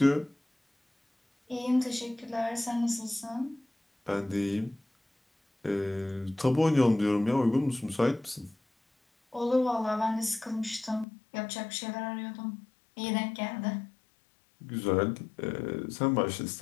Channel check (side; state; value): right; drops out; at 11.1 s